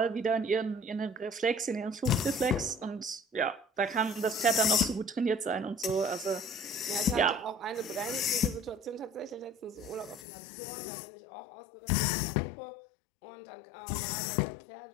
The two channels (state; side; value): drops out; right; at 10.2 s